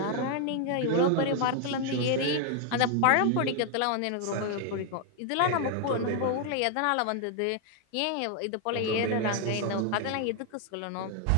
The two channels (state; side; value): different; both; correlation 0.01